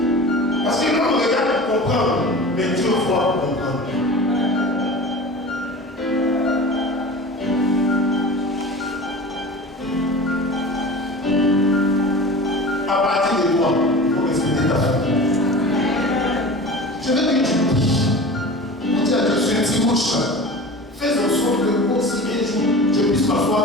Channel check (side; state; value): both; normal; correlation 0.36